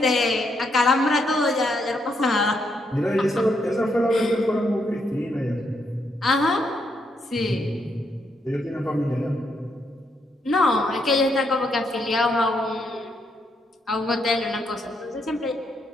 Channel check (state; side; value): normal; both; correlation 0.77